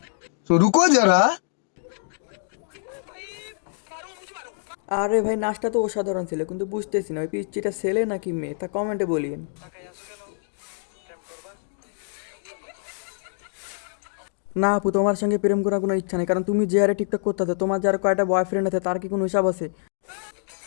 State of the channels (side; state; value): right; silent; digital silence